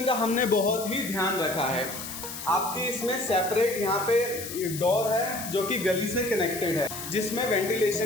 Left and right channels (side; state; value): left; noise; hiss, 9 dB below the sound